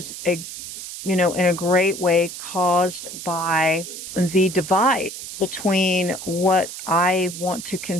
in a great way caused by the divide between what I want to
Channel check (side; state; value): right; noise; hiss, 10 dB below the sound